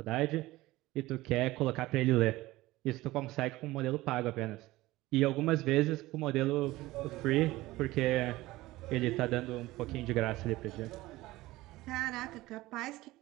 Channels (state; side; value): quieter; left; 18.4 dB